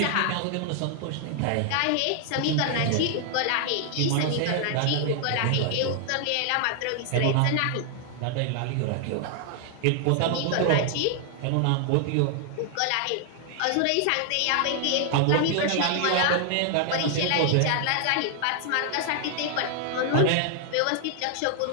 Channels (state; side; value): different; both; correlation 0.00